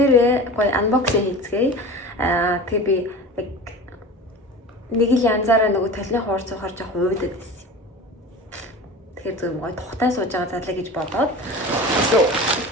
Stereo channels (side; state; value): both; normal; correlation 0.34